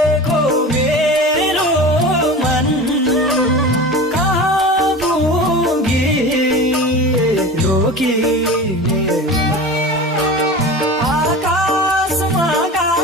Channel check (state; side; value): normal; both; correlation 0.33